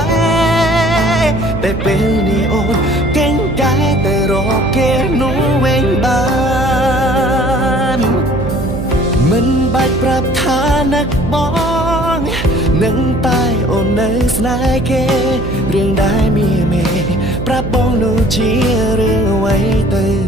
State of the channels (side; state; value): right; noise; hum, 5 dB below the sound